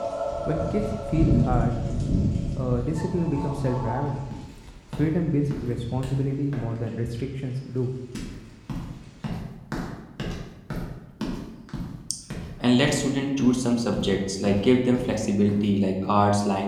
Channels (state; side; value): identical; both; correlation 1.00